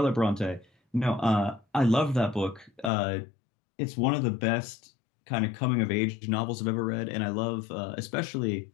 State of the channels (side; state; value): right; drops out; at 2.9 s